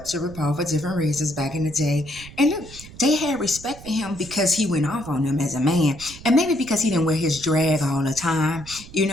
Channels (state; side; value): noise; right; rumble, 17 dB below the sound